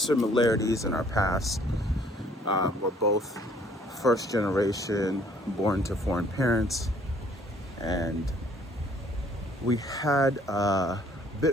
in our past. We're both first generation, born to foreign parents, and we had a bit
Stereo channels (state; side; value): normal; both; correlation 0.59